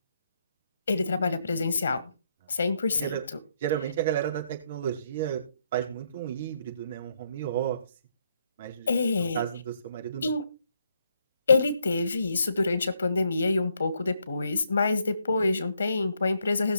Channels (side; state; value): both; inverted; correlation -0.74